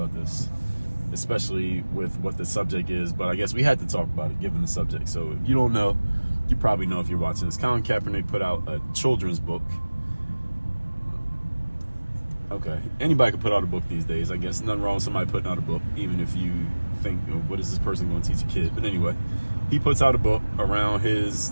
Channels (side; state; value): both; inverted; correlation -1.00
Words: this, especially with what the subject is, but I guess we had to talk about it given the subject. So if you don't know, you probably know if you're watching this. Colin Kaepernick put out a children's book. Okay, anybody can put out a book these days. I guess nothing wrong with somebody putting out a book, even if you think, what is this person going to teach a kid? But anyway, he puts out a book